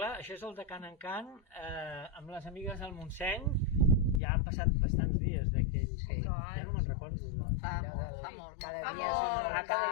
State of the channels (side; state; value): right; drops out; at 4.2 s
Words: això és el de Can en Can, amb les amigues del Montseny. Ja han passat bastants dies d'aquell... Ja no me'n recordo. Fa molt. Cada Fa dia és un molt. nou Cada